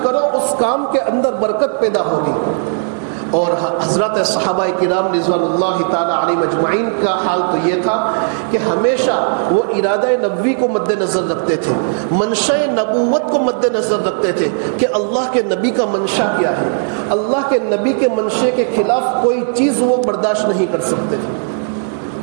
کرو. اس کام کے اندر برکت پیدا ہوگی. اور حضرت صحابہ کرام رضوان اللہ تعالی علیہ مجمعین کا حال تو یہ تھا کہ ہمیشہ وہ ارادہ نبوی کو مد نظر رکھتے تھے, منشا نبوت کو مد نظر رکھتے تھے کہ اللہ کے نبی کا منشا کیا ہے. اللہ کے نبی کے منشے کے خلاف کوئی چیز وہ برداشت نہیں کر سکتے تھے.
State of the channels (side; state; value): left; silent; 69 dB below the other